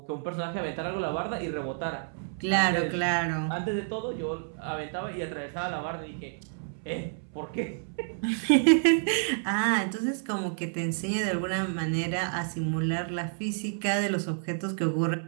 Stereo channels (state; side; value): silent; left; 58 dB below the other